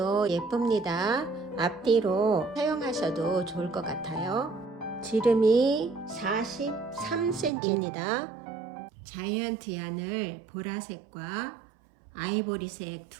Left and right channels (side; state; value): left; drops out; at 7.5 s